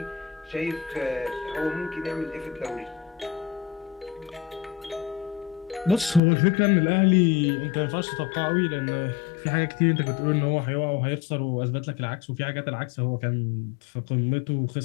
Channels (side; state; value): right; drops out; at 6.2 s